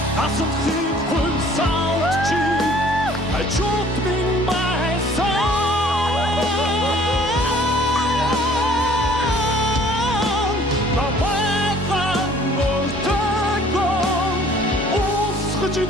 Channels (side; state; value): both; normal; correlation 0.55